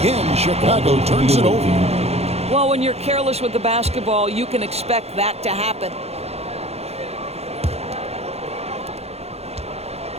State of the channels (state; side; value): late; left; 0.30 ms